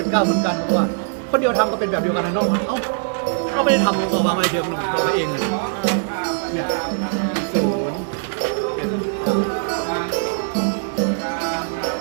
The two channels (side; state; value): left; silent; 59 dB below the other